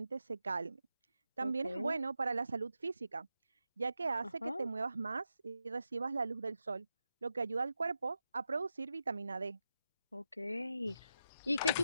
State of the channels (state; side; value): inverted; both; correlation -0.88